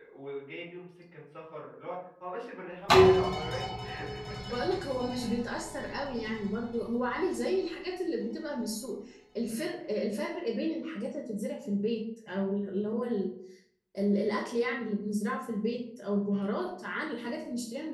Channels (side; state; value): both; identical; correlation 1.00